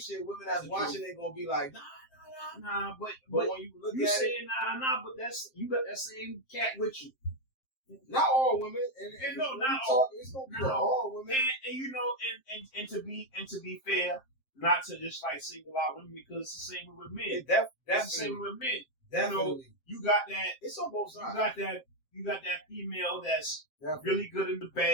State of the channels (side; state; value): right; late; 7.6 ms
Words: Women that's watching it gonna be like, nah. But when you look you at saying it, nah. But that's you got that same cat with you. Not all women, and no, not all. It's gonna be all women. And you know, and to be fair, not to just like single out women because it's the same with men. That's the same with men. Definitely. You got that. It's on both sides. You got that female that's Definitely. really good in the